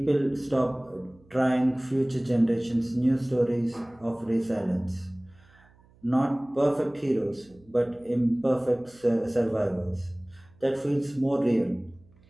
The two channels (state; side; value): noise; right; hum, 29 dB below the sound